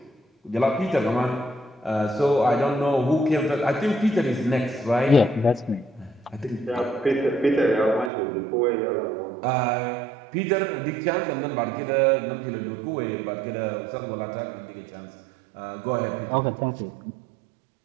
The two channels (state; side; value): drops out; left; at 8.1 s